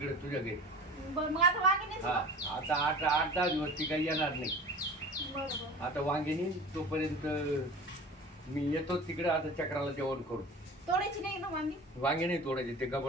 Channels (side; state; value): both; normal; correlation 0.38